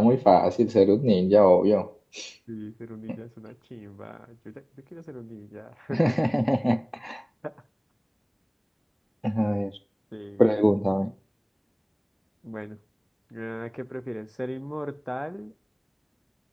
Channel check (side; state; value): both; identical; correlation 1.00